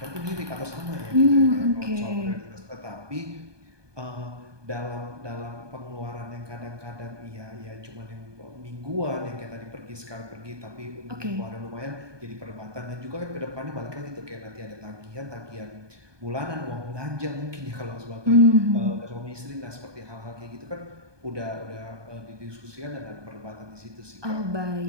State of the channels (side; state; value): left; late; 1.2 ms